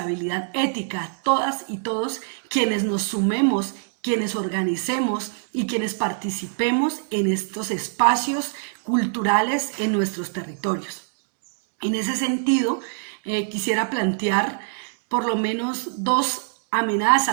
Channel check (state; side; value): silent; left; 61 dB below the other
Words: ética, todas y todos quienes nos sumemos, quienes organicemos y quienes participemos en estos espacios culturales en nuestros territorios. En ese sentido, quisiera plantear por lo menos dos